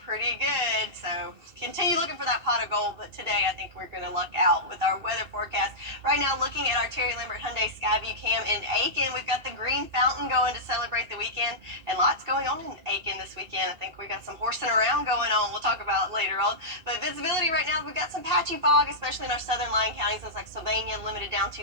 pretty good. So continue looking for that pot of gold, but today I think we're going to luck out with our weather forecast. Right now, looking at our Terry Lambert Hyundai Skyview Cam in Aiken, we've got the Green Fountain going to celebrate the weekend, and lots going on in Aiken this weekend. I think we got some horsing around going on. We'll talk about it later on. But visibility right now, we've got some patchy fog, especially in our southern line counties. Looks like Sylvania limited down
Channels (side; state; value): left; late; 2.7 ms